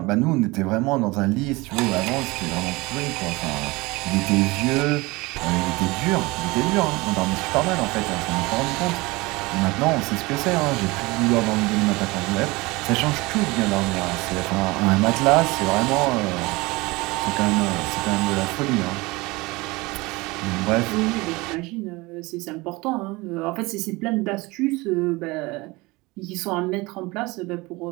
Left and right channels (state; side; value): quieter; left; 23.0 dB